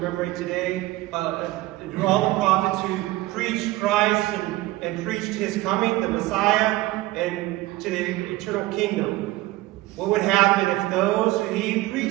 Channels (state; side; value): quieter; left; 18.1 dB